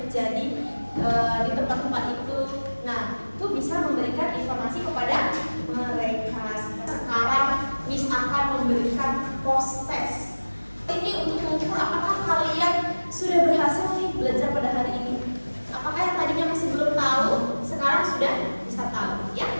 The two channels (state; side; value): inverted; both; correlation -1.00